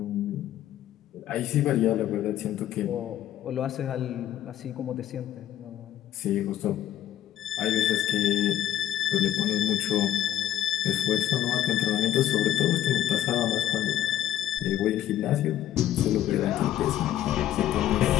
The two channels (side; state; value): right; quieter; 12.1 dB